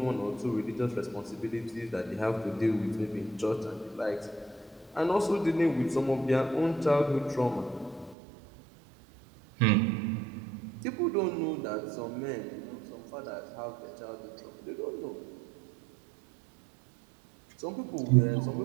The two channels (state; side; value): drops out; left; at 8.2 s